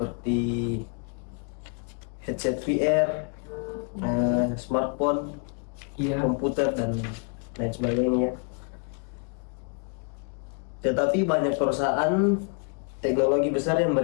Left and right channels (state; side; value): quieter; right; 38.7 dB